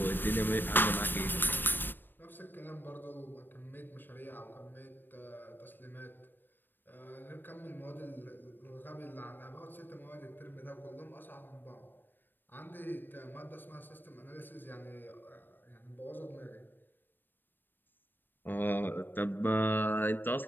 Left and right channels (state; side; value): late; right; 0.094 ms